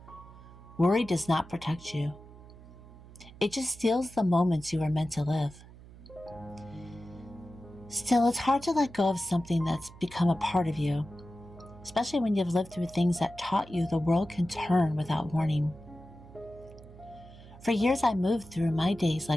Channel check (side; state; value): right; noise; hum, 19 dB below the sound